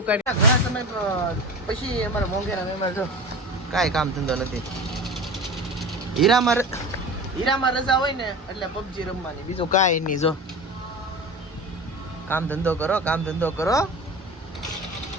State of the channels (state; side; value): normal; both; correlation 0.31